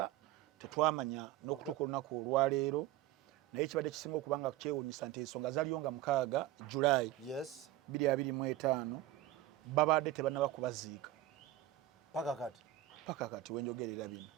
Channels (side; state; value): left; quieter; 14.5 dB